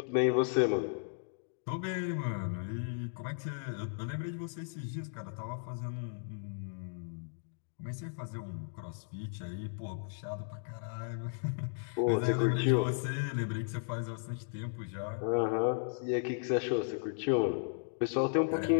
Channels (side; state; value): right; silent; digital silence